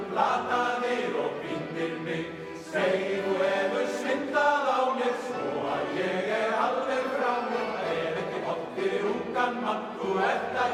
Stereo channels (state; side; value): identical; both; correlation 1.00